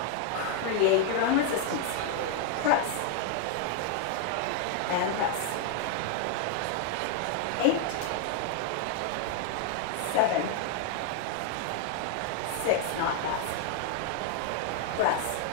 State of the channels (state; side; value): different; both; correlation 0.00